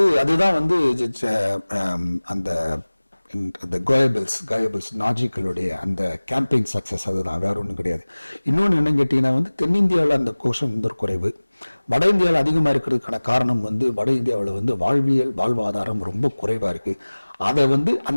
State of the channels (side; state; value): both; inverted; correlation -1.00